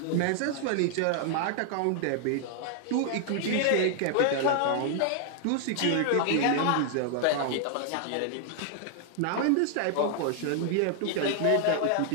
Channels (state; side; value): different; both; correlation 0.00